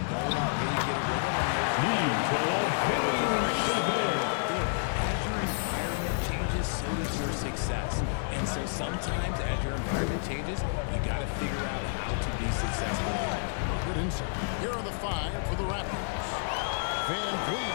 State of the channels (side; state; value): right; silent; digital silence